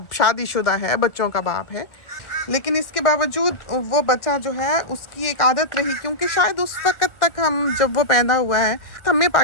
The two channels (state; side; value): late; right; 1.4 ms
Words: शादीशुदा है, बच्चों का बाप है, लेकिन इसके बावजूद वो बच्चा जो है उसकी एक आदत रही, क्योंकि शायद उस वक़्त तक हम जब वो पैदा हुआ है हमें